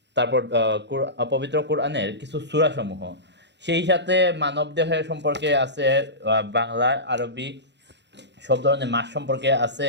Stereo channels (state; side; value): late; left; 0.51 ms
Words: তারপর পবিত্র কোরআনের কিছু সূরাসমূহ। সেই সাথে মানবদেহের সম্পর্কে আছে, বাংলা, আরবি সব ধরনের মাস সম্পর্কে আছে।